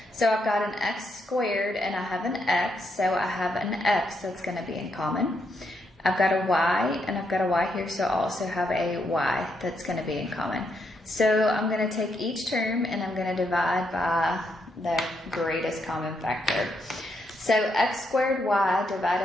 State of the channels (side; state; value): both; normal; correlation 0.78